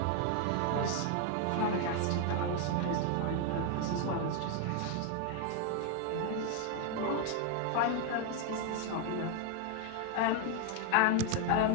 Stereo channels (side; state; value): both; different; correlation 0.01